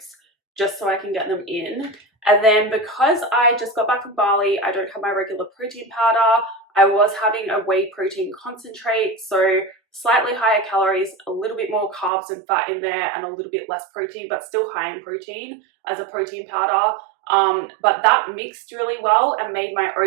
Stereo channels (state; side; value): drops out; left; at 12.1 s